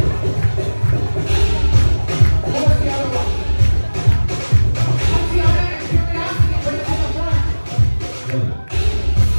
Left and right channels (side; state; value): both; inverted; correlation -1.00